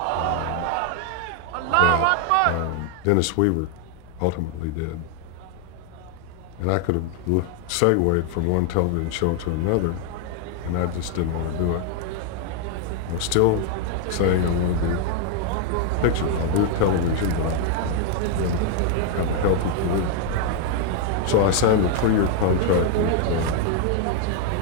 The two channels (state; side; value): different; both; correlation 0.00